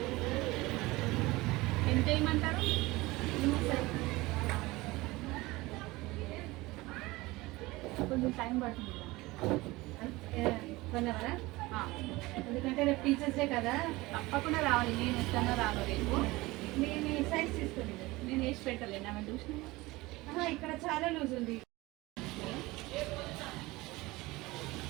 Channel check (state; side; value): quieter; left; 20.8 dB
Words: ఎంత వేయమంటారు? కొంచెం టైం పడుతుంది 1 అవరా, ఎందుకంటే రేపు టీచర్స్ డే కదా. తప్పకుండా రావాలి, నేను వస్తానో రాను రేపు. నేను ఈ సైజ్ తీసుకోండి. నేను వేసి పెట్టలేను, ఆమె చూసిన ఇక్కడ చాలా లూజ్ ఉంది.